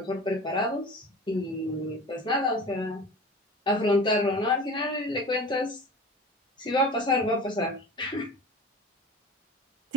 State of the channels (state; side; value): normal; both; correlation 0.37